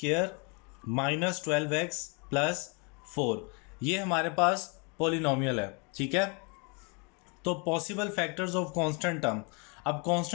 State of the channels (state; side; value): quieter; right; 33.0 dB